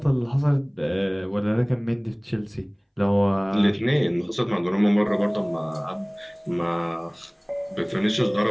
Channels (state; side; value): identical; both; correlation 1.00